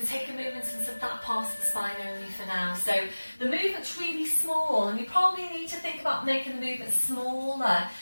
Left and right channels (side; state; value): both; inverted; correlation -1.00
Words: going to take a movement into that part of the spine only for now. So the movement's really small and you probably need to think about making the movement smaller